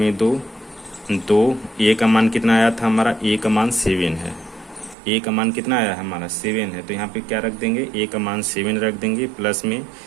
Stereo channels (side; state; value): left; drops out; at 5.0 s